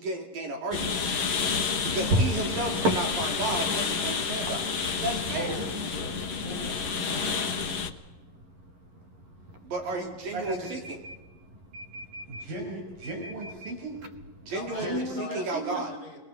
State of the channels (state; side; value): late; left; 10 ms